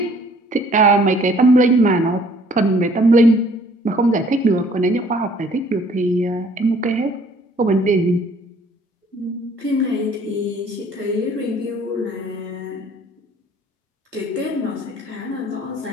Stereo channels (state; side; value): normal; both; correlation 0.57